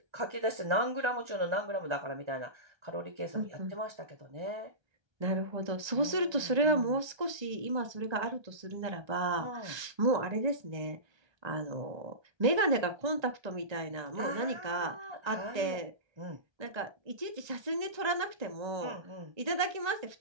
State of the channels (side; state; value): left; late; 1.3 ms